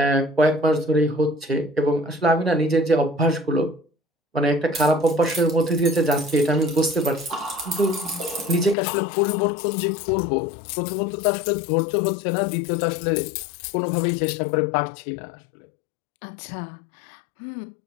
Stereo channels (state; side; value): drops out; right; at 8.8 s